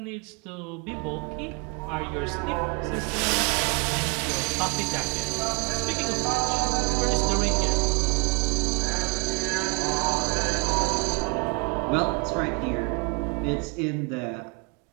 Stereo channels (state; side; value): quieter; left; 33.9 dB